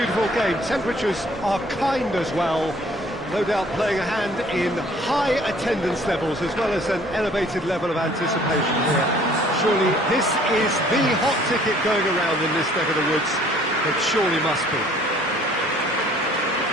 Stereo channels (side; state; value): both; normal; correlation 0.56